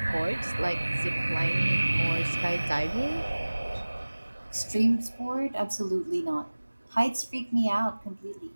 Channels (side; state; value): both; inverted; correlation -1.00